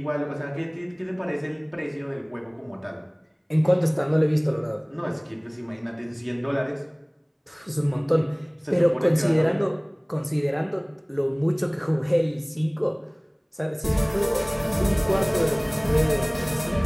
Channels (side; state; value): both; identical; correlation 1.00